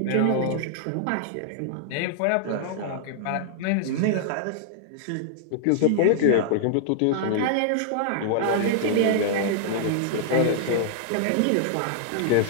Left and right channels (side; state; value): both; different; correlation -0.01